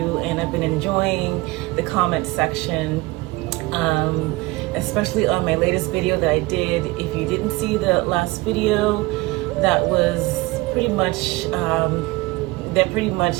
and I've been enjoying the comment section, especially on my latest video that I did. If you didn't see the last video, that was pretty much that pretty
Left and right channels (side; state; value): left; quieter; 21.7 dB